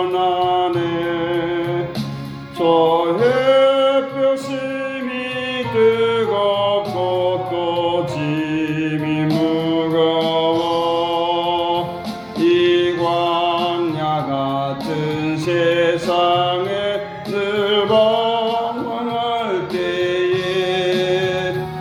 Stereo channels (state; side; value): identical; both; correlation 1.00